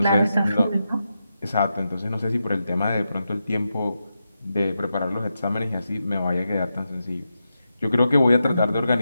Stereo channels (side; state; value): both; inverted; correlation -0.88